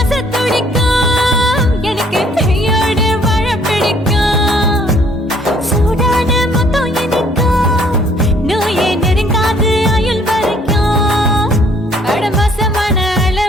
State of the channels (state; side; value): normal; both; correlation 0.62